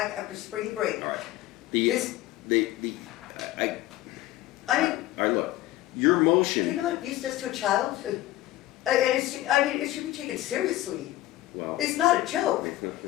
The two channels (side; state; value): right; quieter; 15.9 dB